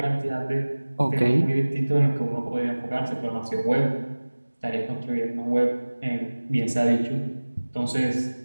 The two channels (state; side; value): inverted; both; correlation -1.00